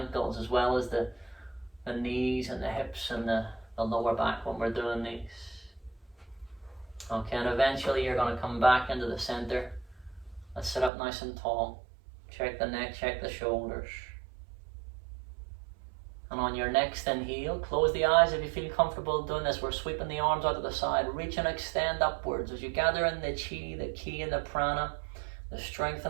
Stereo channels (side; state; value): left; drops out; at 10.9 s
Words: as well as the knees and the hips and the lower back when we're doing these. Okay, and eventually you're going to come back into the center. Let's sit up nice and tall. Check the neck, check the shoulders. And on your next inhale, close the eyes if you feel comfortable doing this. We're sweeping the arms out to the side. Reach and extend upwards as you gather in the chi, the ki, and the prana, the strength